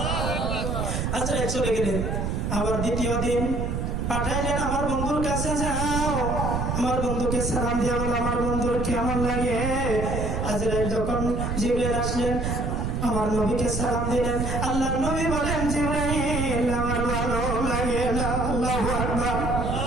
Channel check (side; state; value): right; noise; rumble, 1 dB below the sound